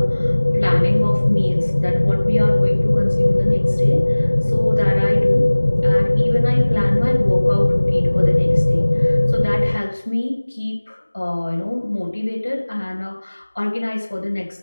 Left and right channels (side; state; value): both; inverted; correlation -1.00